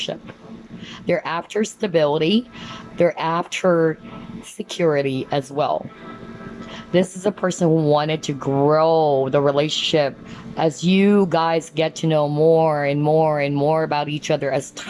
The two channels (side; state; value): both; identical; correlation 1.00